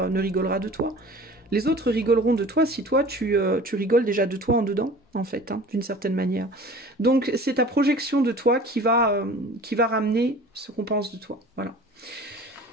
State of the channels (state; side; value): normal; both; correlation 0.43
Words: ne rigolera de toi. Les autres rigoleront de toi si toi, tu rigoles déjà de toi en dedans, en fait, hein, d'une certaine manière. Donc, c'est ta projection de toi qui va ramener ce qu'on pense de toi. Voilà.